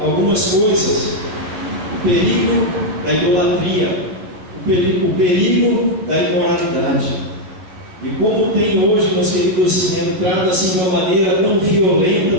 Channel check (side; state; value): left; late; 11 ms